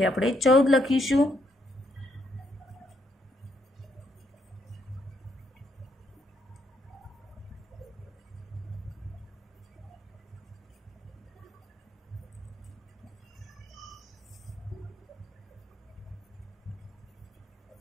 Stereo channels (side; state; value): both; normal; correlation 0.75